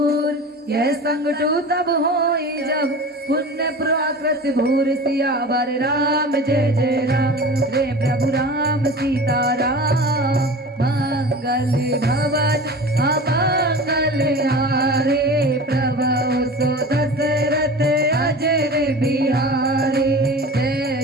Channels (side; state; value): both; normal; correlation 0.35